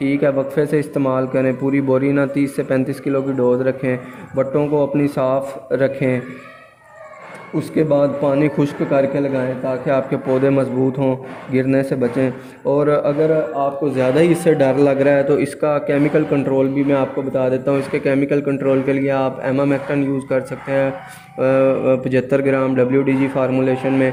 है, वक्फे से इस्तेमाल करें, पूरी बोरी ना 30 से 35 किलो की डोज़ रखें, बट्टों को अपनी साफ़ रखें, उसके बाद पानी खुश्क करके लगाएं ताकि आपके पौधे मज़बूत हों, गिरने से बचें। और अगर आपको ज़्यादा ही इससे डर लग रहा है तो इसका केमिकल कंट्रोल भी मैं आपको बता देता हूँ। इसके केमिकल कंट्रोल के लिए आप एमामेक्टन यूज़ कर सकते हैं 75 ग्राम WDG फार्मूलेशन में,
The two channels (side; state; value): both; identical; correlation 1.00